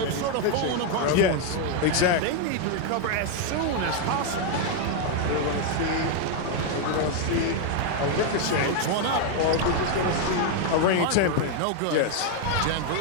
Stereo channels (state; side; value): different; both; correlation 0.00